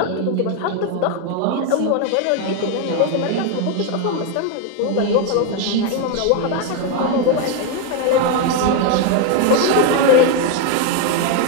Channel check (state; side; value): different; both; correlation 0.01